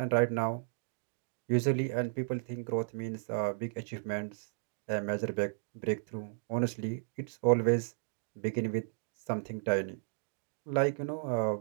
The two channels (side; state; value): left; silent; digital silence